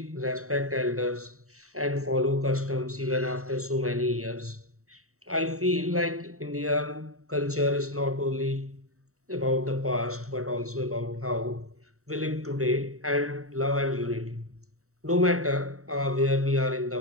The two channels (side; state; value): left; late; 0.64 ms